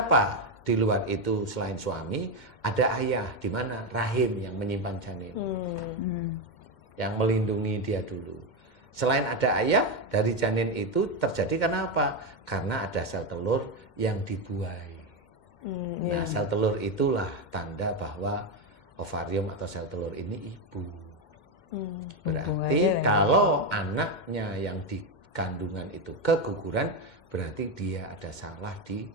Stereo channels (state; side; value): late; right; 2.1 ms